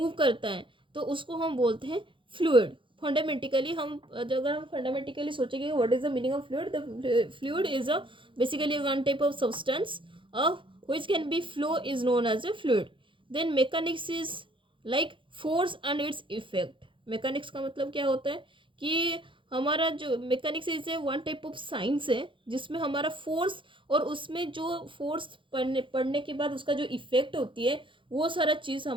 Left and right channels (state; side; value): late; left; 0.25 ms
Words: करता है तो उसको हम बोलते हैं फ्लूइड. फंडामेंटिकली हम अगर हम फंडामेंटिकली सोचेंगे what is the meaning of fluid. The fluid is a basically one type of substance of which can be flow is known as a fluid. Then mechanics is like force and its effect. mechanics का मतलब क्या होता है कि हमारा जो mechanics is a one type of science है जिसमें हमारा फोर्स और उसमें जो फोर्स पढ़ने के बाद उसका जो इफेक्ट होती है वो सारा चीज़